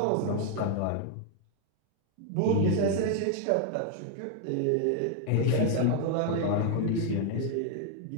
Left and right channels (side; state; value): both; different; correlation 0.00